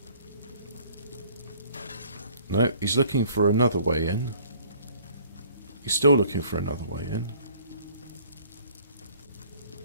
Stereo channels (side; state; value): both; inverted; correlation -0.55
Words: No, he's looking for another way in. He's still looking for another way in.